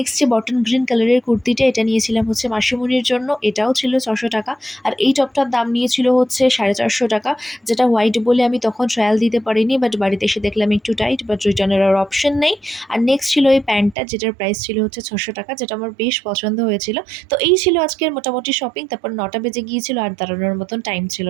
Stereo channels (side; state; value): left; drops out; at 14.0 s